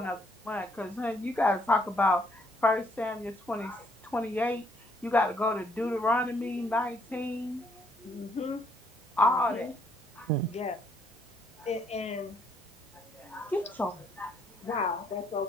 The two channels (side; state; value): both; normal; correlation 0.69